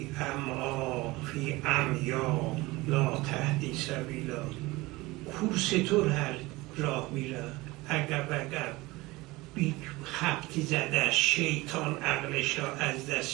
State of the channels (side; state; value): left; quieter; 21.1 dB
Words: عمیا لا تهدی سبیلا. کورستور هر راه میره عقب عقب، بی خبطی زده، شیطان عقلش را از